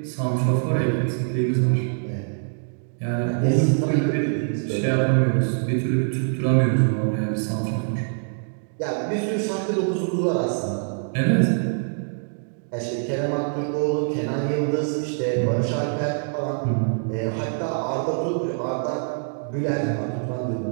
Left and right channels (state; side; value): silent; left; digital silence